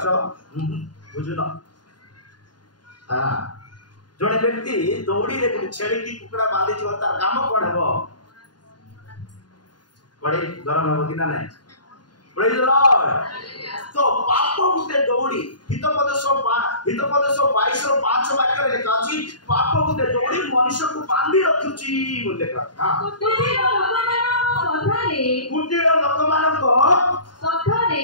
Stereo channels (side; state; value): right; late; 0.70 ms